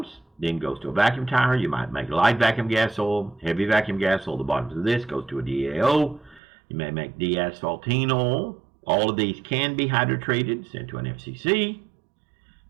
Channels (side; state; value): left; drops out; at 6.4 s